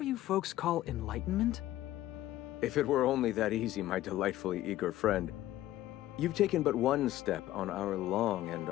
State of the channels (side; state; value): right; quieter; 14.5 dB